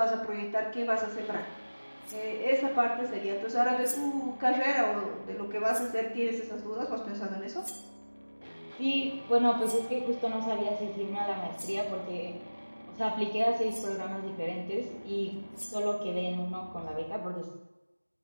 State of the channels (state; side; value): inverted; both; correlation -1.00